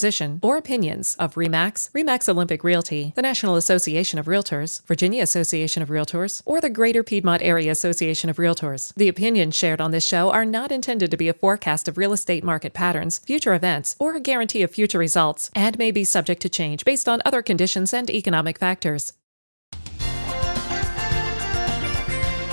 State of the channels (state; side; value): inverted; both; correlation -1.00